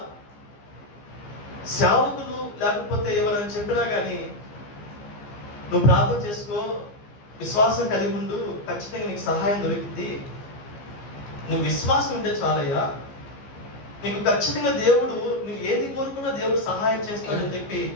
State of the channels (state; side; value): late; right; 15 ms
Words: సేవకులు లేకపోతే ఎవరైనా చెప్పినా కానీ నువ్వు ప్రార్థన చేసుకో, విశ్వాసం కలిగి ఉండు, ఖచ్చితంగా నీకు సహాయం దొరికింది, నువ్వు విశ్వాసం ఉంటే చాలయ్యా, నీకు ఖచ్చితంగా దేవుడు నువ్వు ఏది కోరుకున్నా దేవుడు సహాయం చేస్తాడని చెప్పి